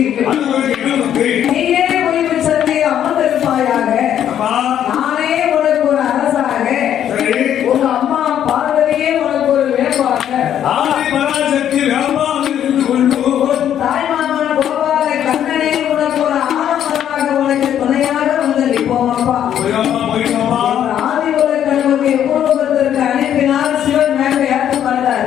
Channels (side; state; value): right; quieter; 10.1 dB